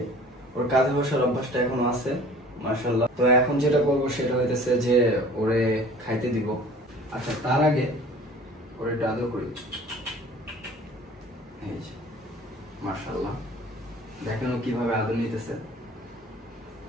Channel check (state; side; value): normal; both; correlation 0.47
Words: ওর কাঁধে বসার অভ্যাসটা এখনো আছে, মাশাআল্লাহ। তো এখন যেটা করবো সেটা হইতেছে যে ওরে খাইতে দিব। আচ্ছা, তার আগে ওরে একটু আদর করি। এই যে মাশাআল্লাহ, দেখেন ও কিভাবে আদর নিতেছে।